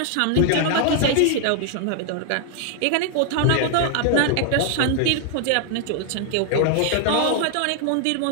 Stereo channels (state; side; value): different; both; correlation 0.00